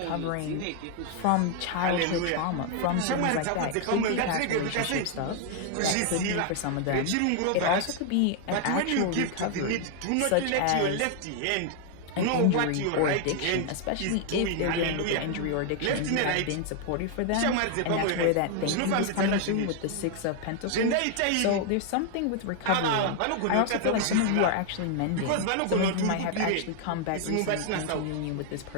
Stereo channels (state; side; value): different; both; correlation 0.00